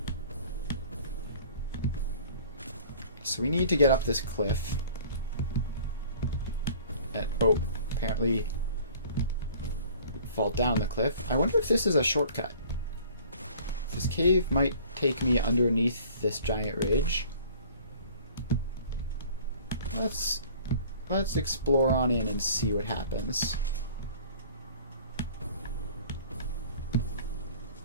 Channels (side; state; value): both; inverted; correlation -0.49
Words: So we need to get up this cliff. Oh, apparently fall down the cliff. I wonder if this is a shortcut. This cave might take me underneath this giant ridge. Let's explore on in and see what happens.